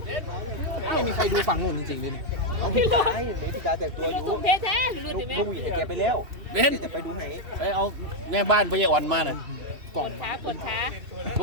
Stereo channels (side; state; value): left; late; 2.7 ms